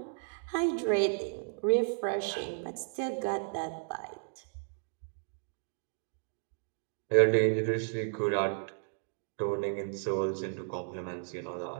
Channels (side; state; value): left; silent; digital silence